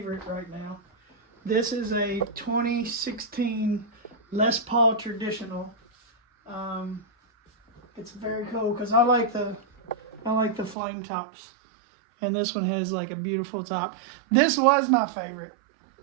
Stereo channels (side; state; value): left; drops out; at 10.8 s